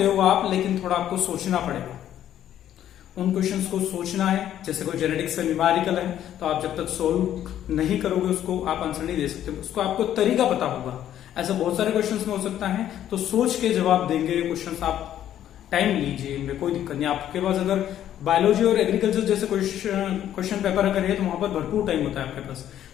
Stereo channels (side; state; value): right; quieter; 11.2 dB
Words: हो आप, लेकिन थोड़ा आपको सोचना पड़ेगा। उन क्वेश्चंस को सोचना है, जैसे कोई जेनेटिक्स का न्यूमेरिकल है तो आप जब तक सोल्व नहीं करोगे उसको आप आंसर नहीं दे सकते, उसको आपको तरीका पता होगा। ऐसा बहुत सारे क्वेश्चंस में हो सकता है, तो सोच के जवाब देंगे क्वेश्चंस। आप टाइम लीजिए, इनमें कोई दिक्कत नहीं। आपके पास अगर बायोलॉजी और एग्रीकल्चर जैसे क्वेश्चन पेपर अगर है तो वहां पर भरपूर टाइम होता है आपके पास,